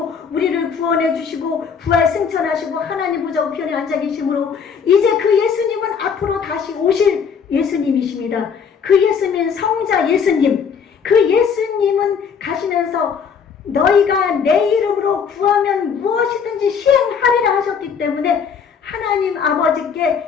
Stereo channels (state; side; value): quieter; right; 6.5 dB